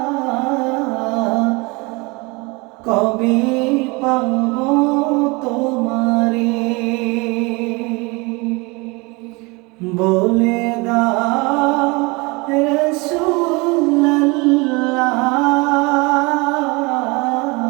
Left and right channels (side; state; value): left; quieter; 26.4 dB